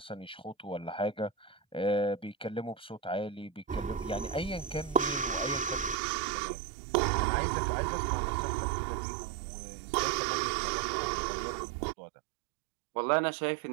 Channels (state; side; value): drops out; left; at 6.0 s